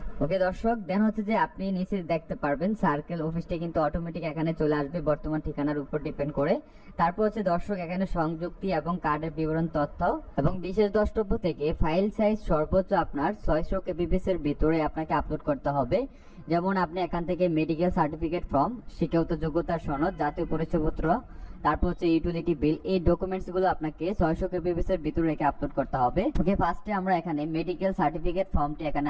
ওকে দর্শক, দেন হচ্ছে যে আপনি নিচে দেখতে পারবেন সার্কেল অফিসটি কিন্তু অটোমেটিক এখানে চলে আসবে বর্তমান ঠিকানার উপর ডিপেন্ড করে। তারপর হচ্ছে দর্শক এখানে সংযুক্তি এবং কার্ডের বিবরণ তথ্য এবং বিশেষ দ্রষ্টব্য থেকে ফাইল সাইজ সর্বোচ্চ আপনার 600 kbps এর ভিতরে আপনাকে আপলোড করতে হবে। যেমন আপনি এখান থেকে মেডিকেল সার্টিফিকেট ফর্ম, শিক্ষাগত যোগ্যতার সনদ, জাতীয় পরিচয়পত্র, তারপর হচ্ছে ইউটিলিটি বিল, এই ডকুমেন্টস গুলো আপনাকে 600 kbps এর ভিতরে রেখে আপলোড করতে হবে। ওকে, ফার্স্টে আমরা এখানে মেডিকেল সার্টিফিকেট ফর্মটি এখানে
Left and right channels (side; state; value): both; identical; correlation 1.00